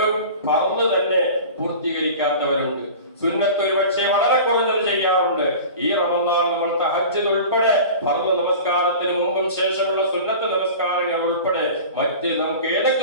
ഫർള് തന്നെ പൂർത്തീകരിക്കാത്തവരുണ്ട്. സുന്നത്ത് ഒരു പക്ഷേ വളരെ കുറഞ്ഞത് ചെയ്യാറുണ്ട്. ഈ റമദാൻ നമ്മൾ തഹജ്ജുദ് ഉൾപ്പെടെ ഫർള് നമസ്കാരത്തിന് മുമ്പും ശേഷമുള്ള സുന്നത്ത് നമസ്കാരങ്ങൾ ഉൾപ്പെടെ മറ്റ് നമുക്ക്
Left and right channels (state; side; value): inverted; both; correlation -0.37